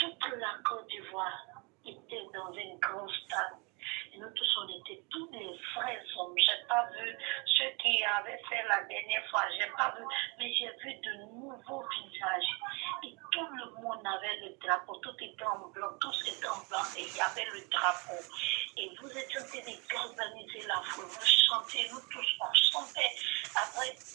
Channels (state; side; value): quieter; left; 30.5 dB